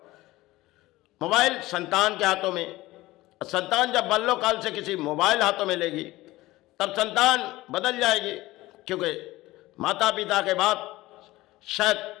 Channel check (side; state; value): right; quieter; 18.2 dB